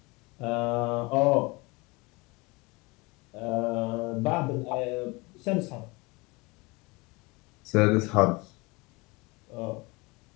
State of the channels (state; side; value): quieter; right; 25.5 dB